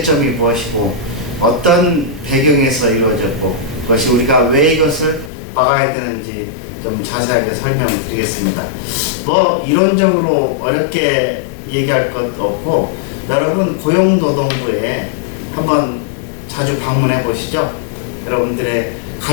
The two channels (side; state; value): right; drops out; at 5.3 s